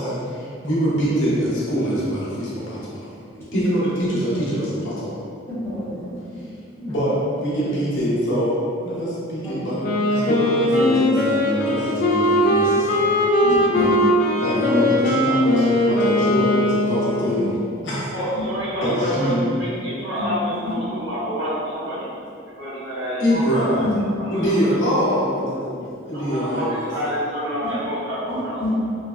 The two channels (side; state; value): both; normal; correlation 0.41